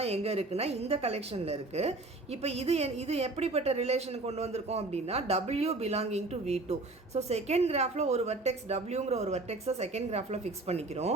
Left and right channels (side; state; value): left; quieter; 3.1 dB